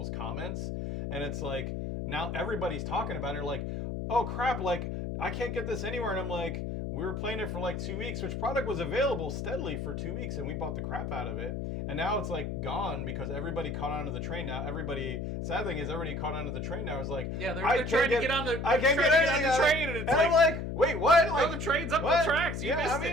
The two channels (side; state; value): left; noise; hum, 4 dB below the sound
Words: comments, and it's now everybody's talking about it. They're like, oh crap, I can't get this anywhere. And I'm like, we were playing it for 2 weeks, which product was available steadily for 2 weeks, and we bought the crap out of it. And now it's gone because everybody caught onto the train now. Sad thing is everybody caught onto the train now. It's they're trying to get on the train, and it's I'm like, wait, what? No, the train's up the tracks. You missed